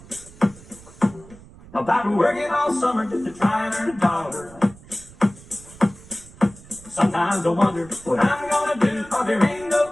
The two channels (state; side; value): noise; right; rumble, 21 dB below the sound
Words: about working all summer just to try and earn a dollar. Sometimes I wonder what I'm gonna do, cause there ain't no